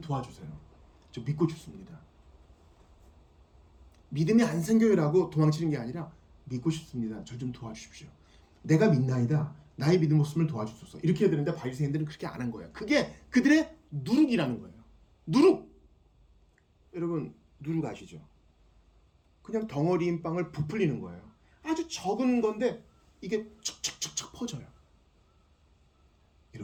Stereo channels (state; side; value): identical; both; correlation 1.00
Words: 저 믿고 싶습니다. 믿음이 안 생겨요라고 도망치는 게 아니라 믿고 싶습니다. 저 좀 도와주십시오. 내가 믿나이다. 나의 믿음 없음을 도와주소서. 이렇게 해야 되는데 바리새인들은 그렇게 안 한 거예요. 그게 그들의 누룩이라는 거예요. 누룩. 여러분, 누룩 아시죠? 그냥 덩어리인 빵을 부풀리는 거예요. 아주 적은 건데 이게 척척척척 퍼져요.